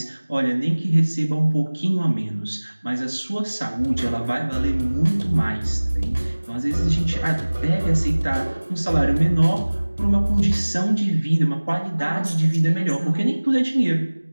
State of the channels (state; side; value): inverted; both; correlation -1.00